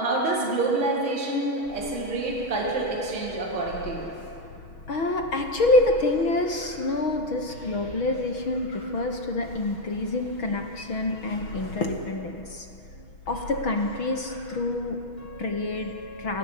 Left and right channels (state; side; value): late; right; 6.3 ms